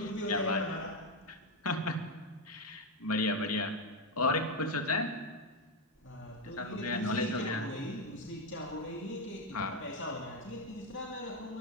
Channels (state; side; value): normal; both; correlation 0.06